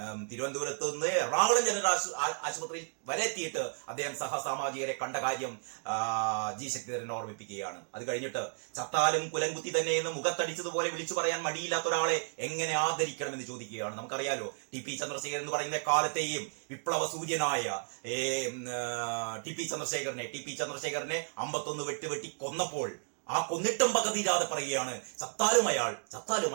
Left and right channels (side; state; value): left; silent; 56 dB below the other